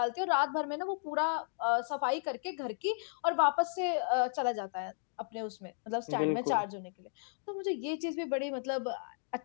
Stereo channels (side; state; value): right; silent; digital silence